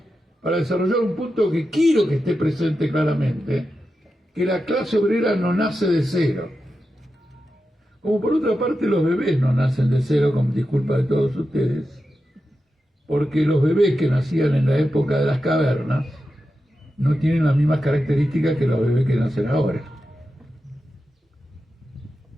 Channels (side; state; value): both; normal; correlation 0.90